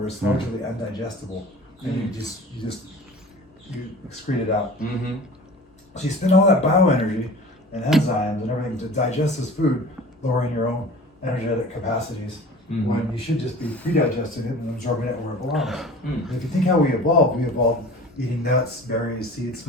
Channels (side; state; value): both; normal; correlation 0.41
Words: it's largely undigestible, and you excrete it out. So you spend all that bioenergy and enzymes and everything to digest this food, lowering your own energetic capacities. When you should just be pre-digesting it and absorbing it where it belongs. If you think how we evolved eating nuts, berries, seeds,